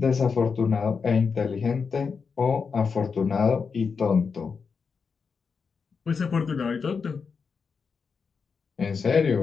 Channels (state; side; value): quieter; right; 5.5 dB